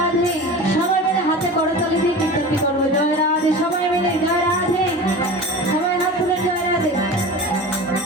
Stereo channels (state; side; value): normal; both; correlation 0.33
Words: সবাই মিলে হাতে করতালি দিয়ে কীর্তনটি করবো জয় রাধে, সবাই মিলে জয় রাধে, সবাই হাত তুলুন জয় রাধে।